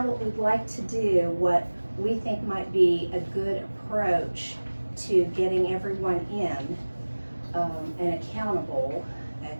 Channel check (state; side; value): inverted; both; correlation -1.00